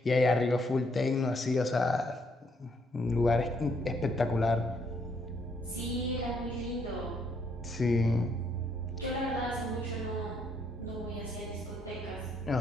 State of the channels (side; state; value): both; normal; correlation 0.71